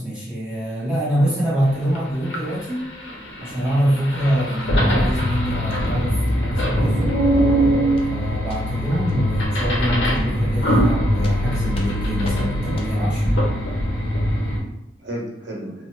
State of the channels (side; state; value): both; normal; correlation 0.78